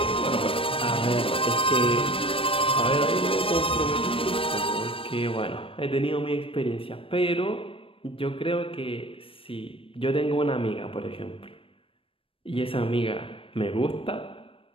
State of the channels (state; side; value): late; right; 0.26 ms